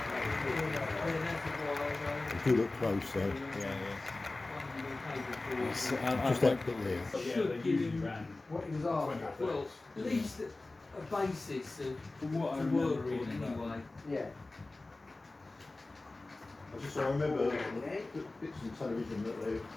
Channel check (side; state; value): right; quieter; 3.1 dB